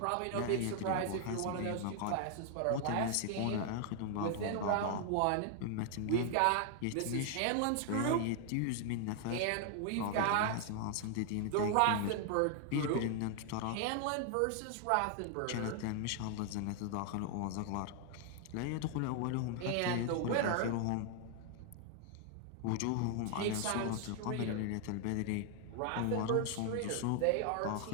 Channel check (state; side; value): different; both; correlation 0.00